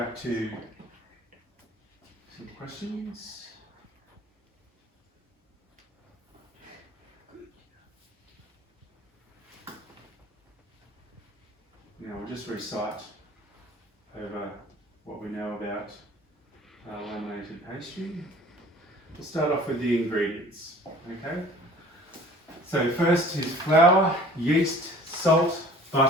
to some questions. Now we'll just recite over what we know about laminated pastry. We'll start off with the ingredients, okay? So first is flour, yeast, salt,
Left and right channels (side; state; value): both; normal; correlation 0.48